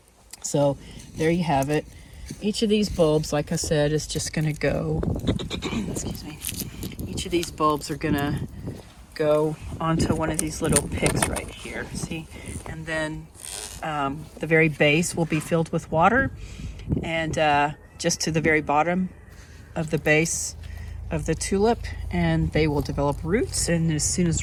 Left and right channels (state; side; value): identical; both; correlation 1.00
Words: So there you have it. Each of these bulbs, like I said, is just going to go, excuse me, each of these bulbs are going to go onto one of these little picks right here, see? And then the very base will be filled with water, and just to the very bottom of the base of the tulip, and they will develop roots. And as soon